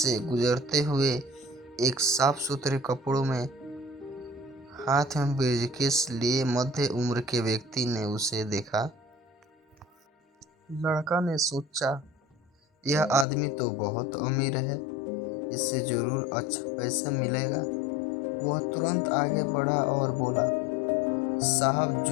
गुजरते हुए एक साफ सुथरे कपड़ों में हाथ में ब्रीफकेस लिए मध्य उम्र के व्यक्ति ने उसे देखा। लड़का ने सोचा, यह आदमी तो बहुत अमीर है, इससे जरूर अच्छा पैसा मिलेगा। वह तुरंत आगे बढ़ा और बोला, साहब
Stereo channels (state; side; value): drops out; right; at 13.2 s